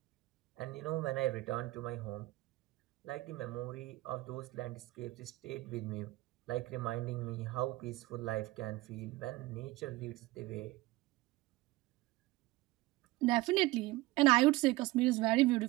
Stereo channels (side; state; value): left; quieter; 19.5 dB